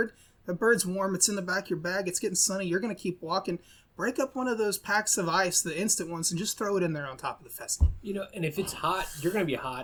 the bird's warm, it's in the back of your bag, it's getting sunny, you're going to keep walking. Break up one of those packs of ice, the instant ones, and just throw it in there on top of the pheasant. And if it's hot, you're going to be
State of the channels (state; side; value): identical; both; correlation 1.00